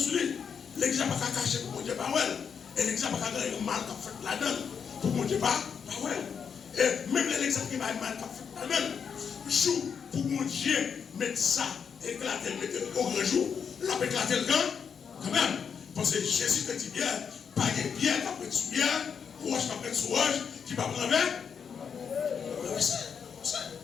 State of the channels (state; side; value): quieter; right; 6.8 dB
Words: lui. L'église n'a pas qu'à cacher pour mon Dieu pas well. Et l'église n'a pas qu'à gagner mal qu'a fait là-dedans pour mon Dieu pas well. Et même l'église qui va mal qu'a fait là-dedans, jour pour mon Dieu mettre ça, éclater, mettre au grand jour, l'a éclater le camp, quand même. Parce que Jésus te dit bien, pas de pierre qui après sous pierre, roche qui après sous roche, qui va prendre avec.